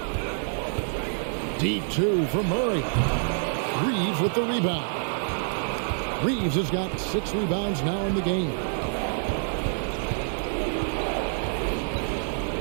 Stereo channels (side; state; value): left; silent; digital silence